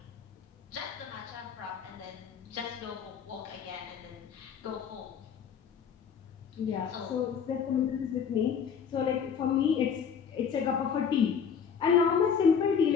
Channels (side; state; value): right; quieter; 7.0 dB